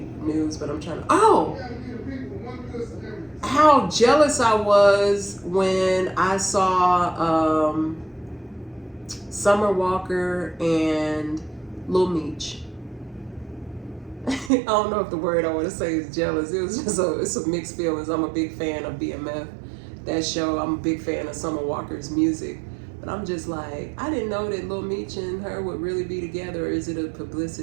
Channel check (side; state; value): left; drops out; at 14.5 s